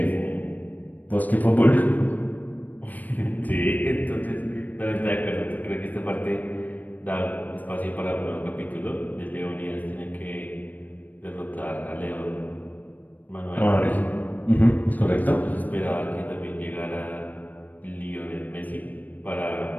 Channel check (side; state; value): right; late; 0.083 ms